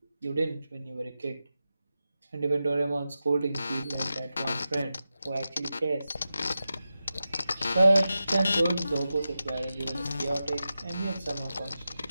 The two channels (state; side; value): inverted; both; correlation -0.91